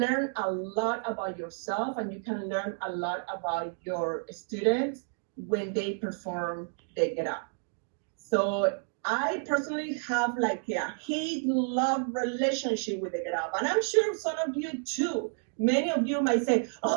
a lot about yourself, and you can learn a lot about your students when they perform the get up. So I personally have like a hate-love relationship with the get up, and I'm sure some of you too. Many of you might say,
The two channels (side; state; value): left; silent; 58 dB below the other